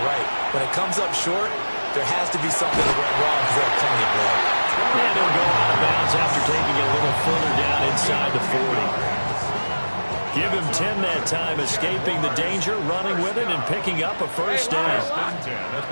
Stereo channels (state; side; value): inverted; both; correlation -1.00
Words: right. When it comes up short, there has to be something that went wrong because they have plenty of room. And they'll go out of bounds after taking it a little further down inside the 40. Give him 10 that time, escaping the danger, running with it, and picking up a first down.